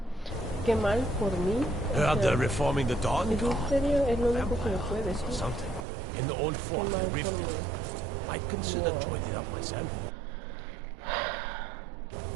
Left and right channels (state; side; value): drops out; left; at 5.9 s